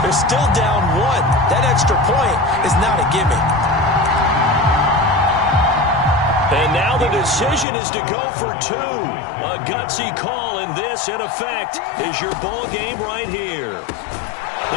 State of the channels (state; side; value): drops out; right; at 7.7 s